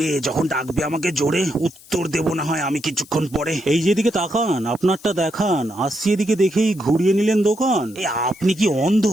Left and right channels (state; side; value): noise; left; hiss, 23 dB below the sound